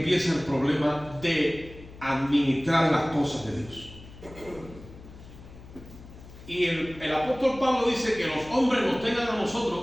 el problema de administrar las cosas de Dios. Y el apóstol Pablo dice que los hombres nos tengan a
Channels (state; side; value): noise; left; hum, 18 dB below the sound